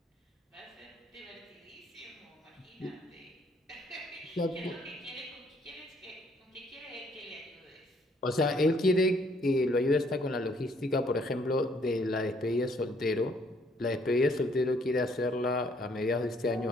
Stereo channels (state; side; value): normal; both; correlation 0.65